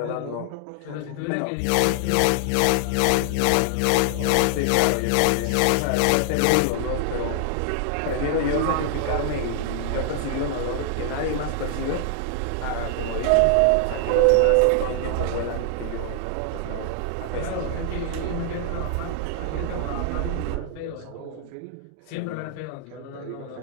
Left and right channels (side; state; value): both; different; correlation 0.00